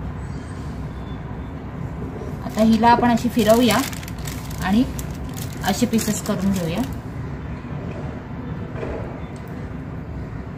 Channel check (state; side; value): identical; both; correlation 1.00